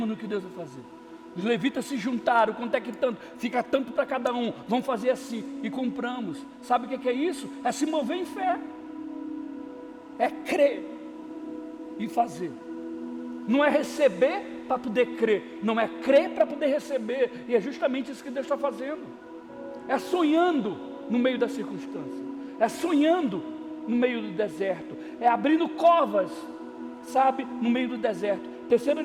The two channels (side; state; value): both; identical; correlation 1.00